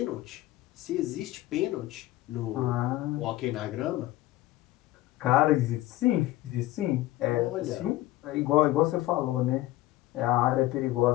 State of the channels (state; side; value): quieter; right; 16.7 dB